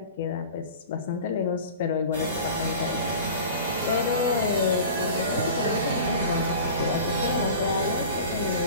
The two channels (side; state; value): both; inverted; correlation -0.37